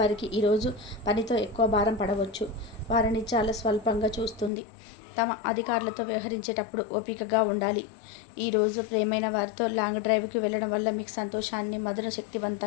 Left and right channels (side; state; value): right; drops out; at 4.5 s